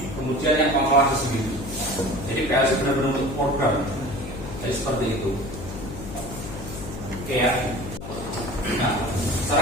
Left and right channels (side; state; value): left; noise; hum, 10 dB below the sound